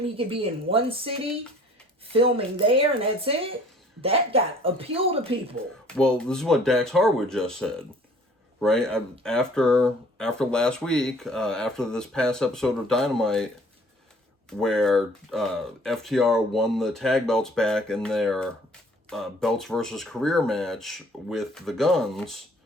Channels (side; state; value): both; normal; correlation 0.54